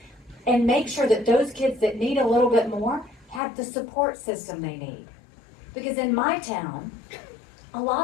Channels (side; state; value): right; drops out; at 3.4 s